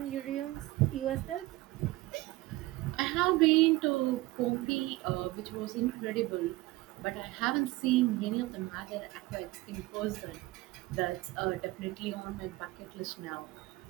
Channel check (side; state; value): left; quieter; 19.2 dB